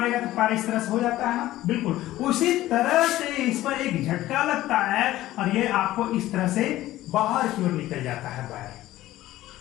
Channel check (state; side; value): quieter; right; 15.4 dB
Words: तो पैर इस तरह से हो जाता है ना, बिल्कुल उसी तरह से इस पर एक झटका लगता है और ये आपको इस तरह से बाहर की ओर निकल जाता है वायर।